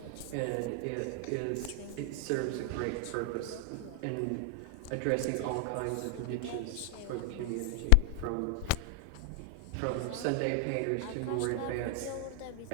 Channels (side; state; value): both; different; correlation 0.00